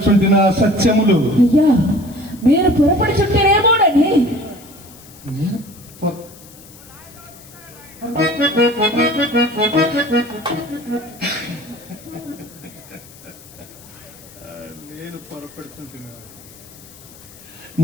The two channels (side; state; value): left; noise; hiss, 21 dB below the sound